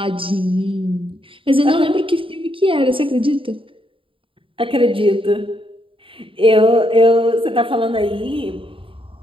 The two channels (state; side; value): late; left; 0.25 ms